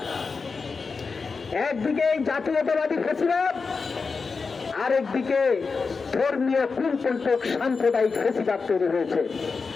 একদিকে জাতীয়তাবাদী ফ্যাসিবাদ, আরেকদিকে ধর্মীয় কুলপন্থক সাম্প্রদায়িক ফ্যাসিবাদ তৈরি হয়েছে।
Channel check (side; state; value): right; quieter; 4.7 dB